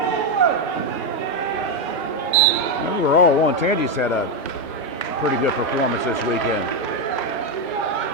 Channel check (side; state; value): both; normal; correlation 0.05